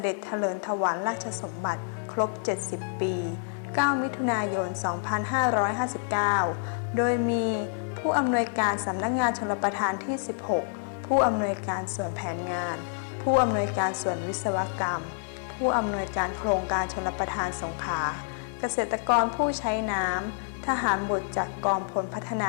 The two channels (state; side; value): silent; right; digital silence